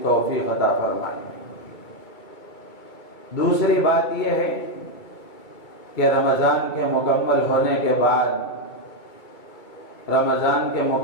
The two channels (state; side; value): late; right; 2.3 ms